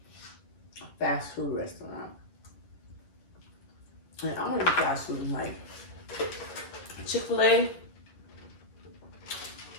a fast food restaurant. And I don't eat fast food like Chick-fil-A.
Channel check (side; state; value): right; late; 11 ms